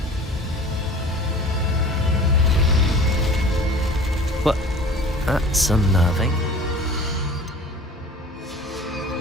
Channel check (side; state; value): both; normal; correlation 0.44